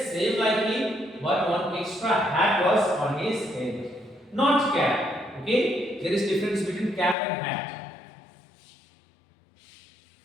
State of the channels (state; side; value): drops out; right; at 7.2 s